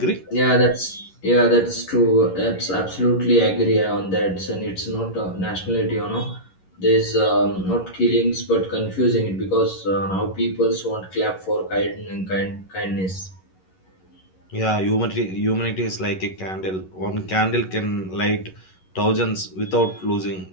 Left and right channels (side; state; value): right; late; 11 ms